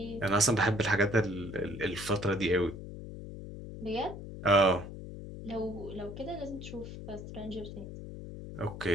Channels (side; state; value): left; noise; hum, 10 dB below the sound